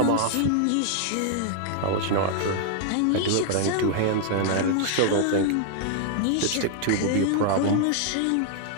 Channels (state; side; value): different; both; correlation 0.00